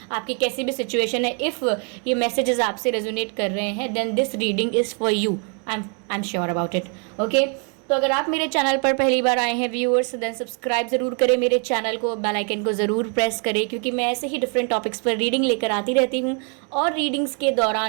आपकी कैसी भी सिचुएशन है, इफ़ ये मैसेजेस आपसे रेजोनेट कर रहे हैं then this reading is for you. I am sure about it. Okay, तो अगर आप मेरे चैनल पर पहली बार आए हैं व्यूअर्स, देन सब्सक्राइब ज़रूर करें मेरे चैनल को, बेल आइकन को ज़रूर प्रेस करें, क्योंकि मैं ऐसे ही डिफरेंट टॉपिक्स पर रीडिंग लेकर आती रहती हूँ। और रीडिंग्स के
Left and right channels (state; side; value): quieter; left; 39.1 dB